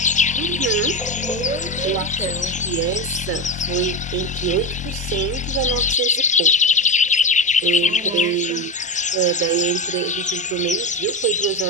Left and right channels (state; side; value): normal; both; correlation 0.17